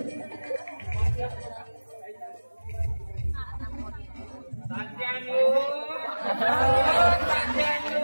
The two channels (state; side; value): inverted; both; correlation -1.00